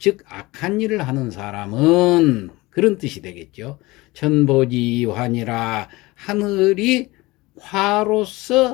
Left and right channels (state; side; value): quieter; right; 21.2 dB